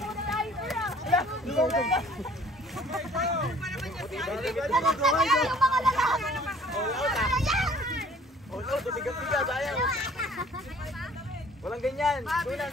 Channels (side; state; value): both; normal; correlation 0.53